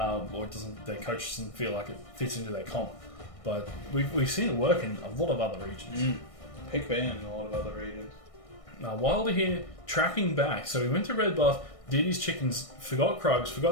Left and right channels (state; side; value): late; right; 1.6 ms